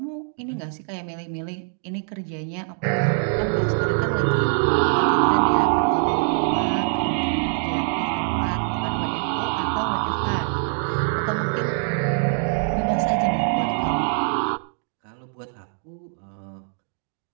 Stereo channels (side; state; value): left; silent; 59 dB below the other